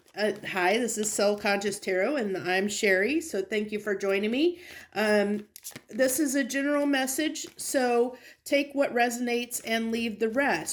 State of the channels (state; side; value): identical; both; correlation 1.00